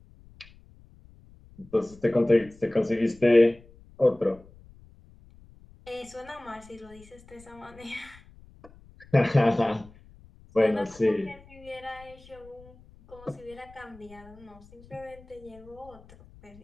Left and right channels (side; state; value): left; noise; rumble, 24 dB below the sound